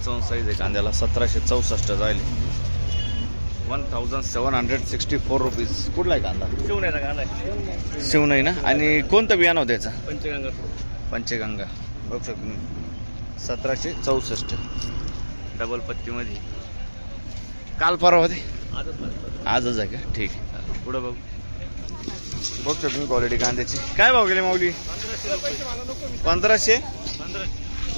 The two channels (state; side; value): inverted; both; correlation -1.00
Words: साईज आहे कांद्याला. 1764 जायले. 1764 रुपीज. कुठला आहे कांदा? शिवण्याचा कांदा आहे. शिवणाई ना. आणि कोणतं बियाणं होतं त्याचं? पंचगंगा. पंचगंगा. बघू शकतो तुम्ही 1764 डबल पत्तीमध्ये. काल परवा होते? आजच आहे का? ठीक आहे. पुढं बघू बघू शकतो तुम्ही क्वालिटी कांद्याची. काय भाव गेले माऊली? 1500.